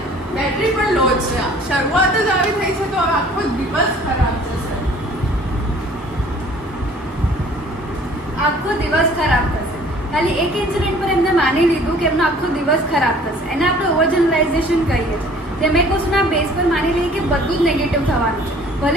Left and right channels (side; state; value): both; normal; correlation 0.52